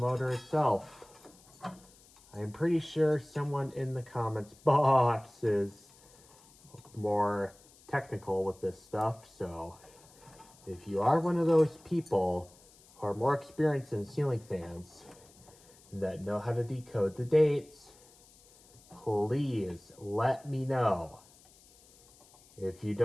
itself. I'm pretty sure someone in the comments box is more technical with this stuff, so if you are one of those people who are more experienced in ceiling fans that know how to decode the dates, please let me know. If you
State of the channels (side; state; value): left; noise; hiss, 26 dB below the sound